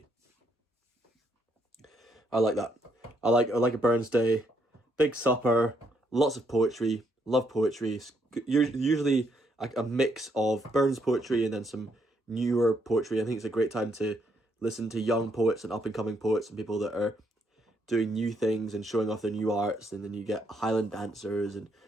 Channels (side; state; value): both; normal; correlation 0.74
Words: I like that. I like a Burns Day, big supper, lots of poetry, love poetry. Usually a mix of Burns poetry and then some newer poetry. I think it's a great time to listen to young poets and up-and-coming poets and people that are doing new things and showing off their new arts, and then you get Highland dancers and